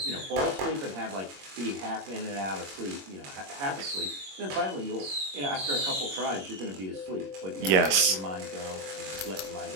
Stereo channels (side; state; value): left; late; 21 ms